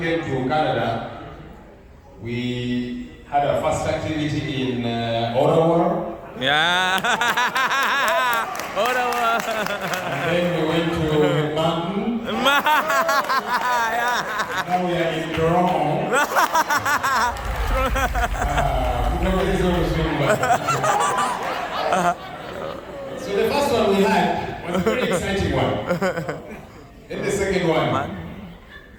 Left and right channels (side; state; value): both; identical; correlation 1.00